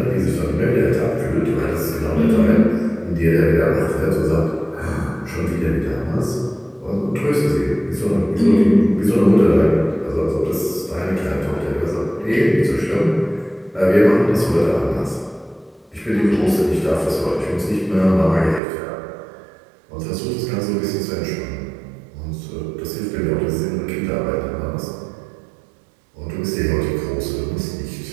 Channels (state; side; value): drops out; left; at 18.6 s